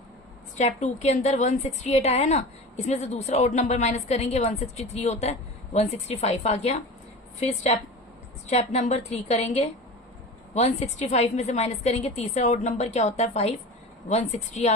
स्टेप 2 के अंदर 168 आया ना, इसमें से दूसरा ओड नंबर माइनस करेंगे, 163 होता है, 165 आ गया। फिर स्टेप नंबर 3 करेंगे। 165 में से माइनस करेंगे, तीसरा ओड नंबर क्या होता है 5, 160 आ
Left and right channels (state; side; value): normal; both; correlation 0.33